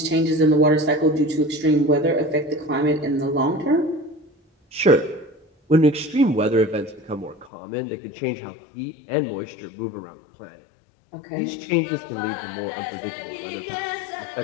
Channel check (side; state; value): right; drops out; at 7.5 s